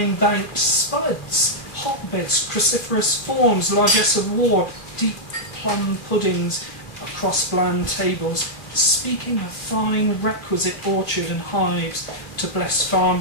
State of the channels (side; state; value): right; late; 2.4 ms